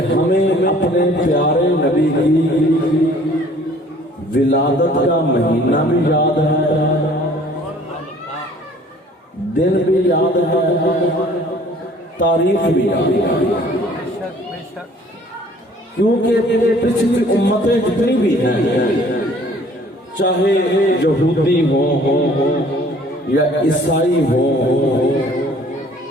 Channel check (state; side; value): normal; both; correlation 0.55